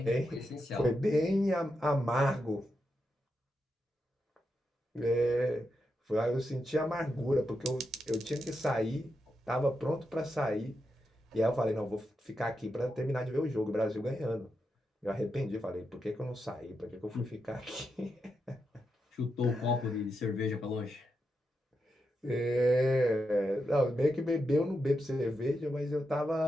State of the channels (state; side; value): normal; both; correlation 0.86